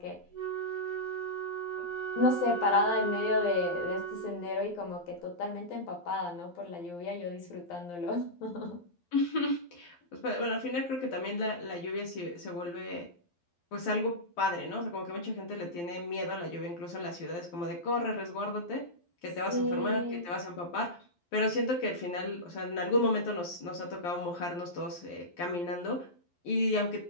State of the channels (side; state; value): right; late; 12 ms